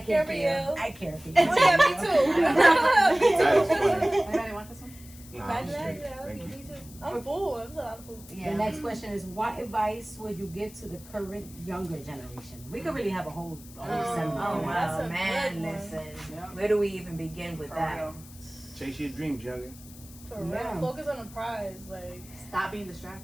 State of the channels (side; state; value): left; noise; hiss, 20 dB below the sound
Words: Care can't for feel. you. I care for you. Oh yeah, me too. That is funny. Anybody want this one? Nah, I'm Imagine that. straight. Yeah, I love Thank you. you. Me too. I'm full. That's a lot of food. The Yeah. next question is, what advice would you give to the current younger generation? We could really have a whole segment. Oh on that. That's wow, a man! good one. Listen, where do we even begin with that? Chase your dreams, youngin. For real. Yeah. Focus on the prize. Like, Stop being